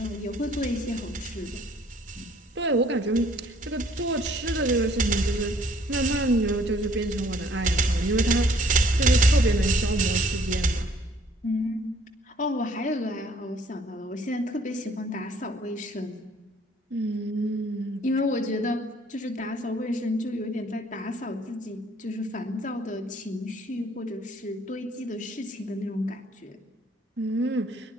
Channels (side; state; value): both; normal; correlation 0.60